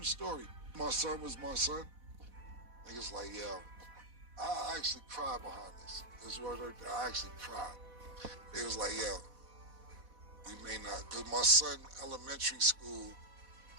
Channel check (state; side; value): late; left; 4.1 ms